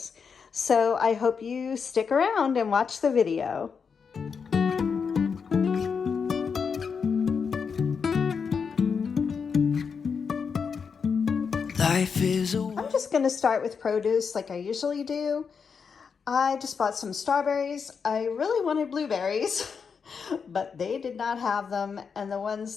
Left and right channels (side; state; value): right; quieter; 6.0 dB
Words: So I hope you stick around and watch the video. I'm just going to start with produce like I usually do. I just bought some strawberries. I really wanted blueberries, but they did not have them. And the ones